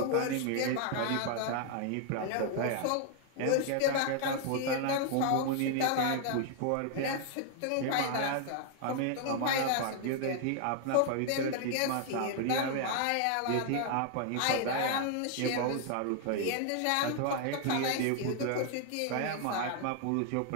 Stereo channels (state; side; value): different; both; correlation 0.00